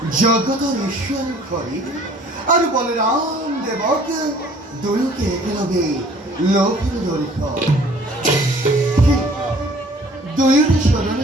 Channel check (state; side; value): normal; both; correlation 0.54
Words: জগতর ঈশ্বর হরি আর বলরাম দেবক দুয়োকে একেলগে লোকের জড়িত দুয়োরে